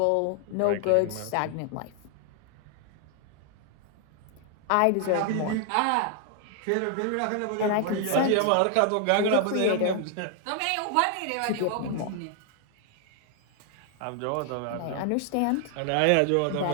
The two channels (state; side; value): different; both; correlation 0.00